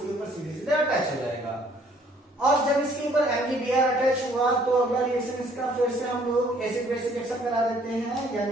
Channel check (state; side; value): normal; both; correlation 0.61